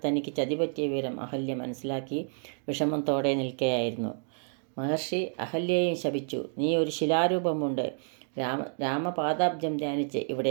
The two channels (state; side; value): silent; left; 58 dB below the other